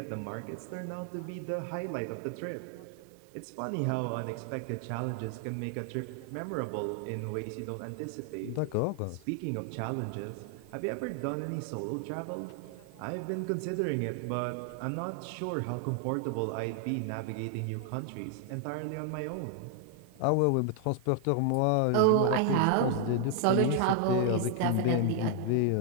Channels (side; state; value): both; different; correlation 0.00